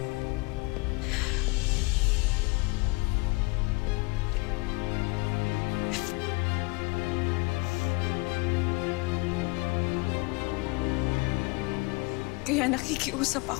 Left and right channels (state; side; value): quieter; right; 26.5 dB